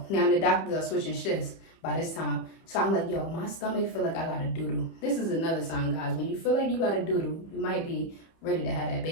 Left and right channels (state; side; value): late; right; 30 ms